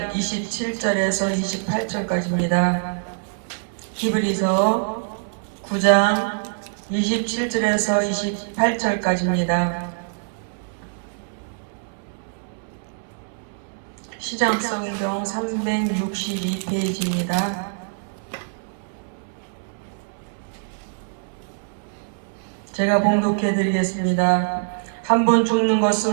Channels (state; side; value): silent; left; digital silence